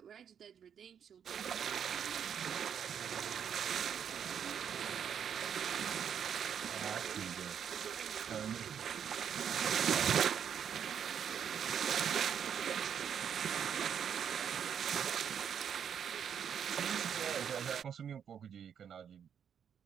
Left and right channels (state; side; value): quieter; left; 8.2 dB